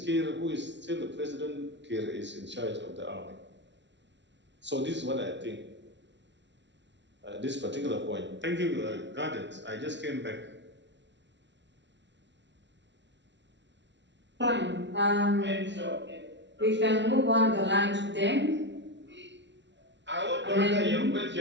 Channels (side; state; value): left; late; 0.52 ms